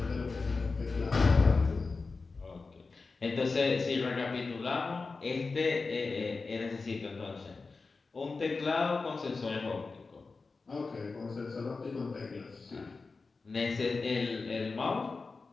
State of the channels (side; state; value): right; quieter; 4.1 dB